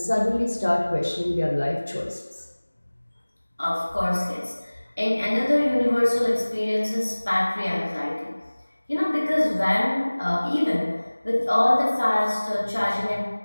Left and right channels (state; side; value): inverted; both; correlation -1.00